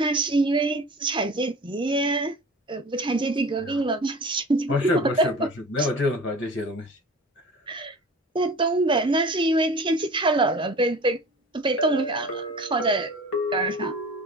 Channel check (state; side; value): normal; both; correlation 0.39